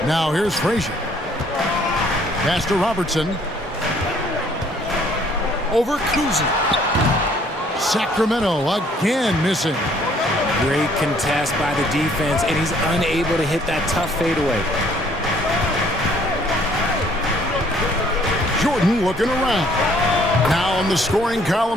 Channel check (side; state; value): both; normal; correlation 0.61